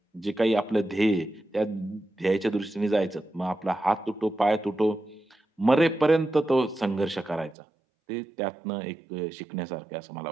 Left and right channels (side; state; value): left; drops out; at 7.6 s